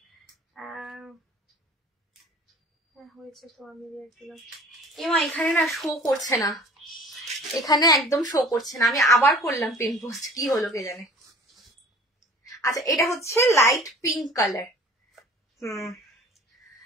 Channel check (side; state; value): both; normal; correlation 0.47